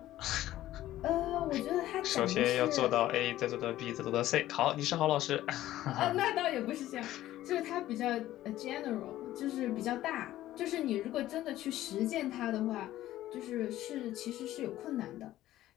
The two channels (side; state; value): right; quieter; 14.4 dB